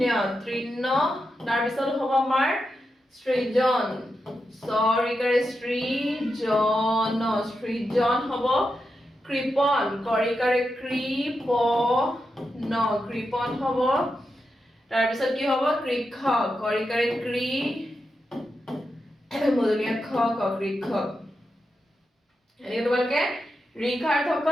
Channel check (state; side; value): normal; both; correlation 0.87